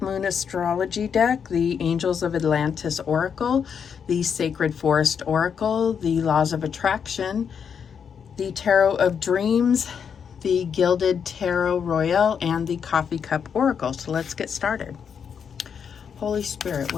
Moon Astrology deck, the Angels of Atlantis Oracle, the Sacred Forest Oracle, the Laws of Attraction, the Tarot of Dreams, the Gilded Tarot Royale, and the Coffee Cup Oracle. So let's get started. Holy Spirit,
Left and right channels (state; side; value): quieter; right; 7.1 dB